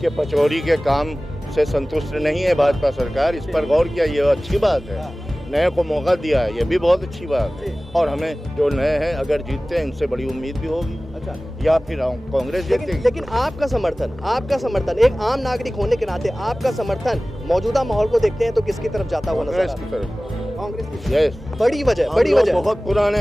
पचौरी के काम से संतुष्ट नहीं है भाजपा सरकार, इस पर गौर किया, ये अच्छी बात है। नए को मौका दिया है, ये भी बहुत अच्छी बात है। और हमें जो नए हैं अगर जीतते हैं इनसे बड़ी उम्मीद भी होगी। अच्छा, या फिर कांग्रेस जीतेगी। लेकिन आपका समर्थन एक आम नागरिक होने के नाते आपका समर्थन मौजूदा माहौल को देखते हैं तो किसकी तरफ जाता हुआ नजर आ कांग्रेस रहा की तरफ। है? कांग्रेस की। यस, बड़ी वजह बहुत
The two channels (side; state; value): both; normal; correlation 0.97